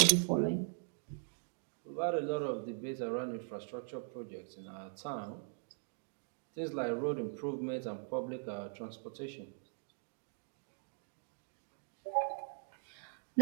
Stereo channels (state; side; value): silent; left; digital silence